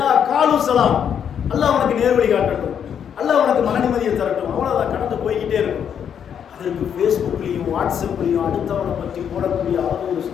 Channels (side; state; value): right; quieter; 8.3 dB